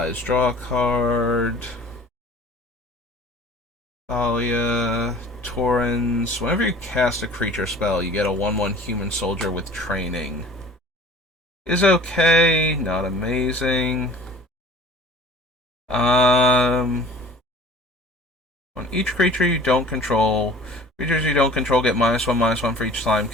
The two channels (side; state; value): both; normal; correlation 0.46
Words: draw a card. Thalia. Torrens. Whenever you cast a creature spell, you get a 1/1 human soldier with training. Is okay, not amazing. On each creature you don't control, creatures you don't control get -1/-1 for each slime